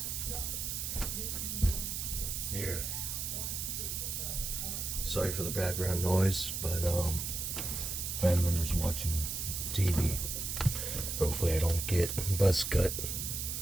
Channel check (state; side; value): noise; right; hiss, 3 dB below the sound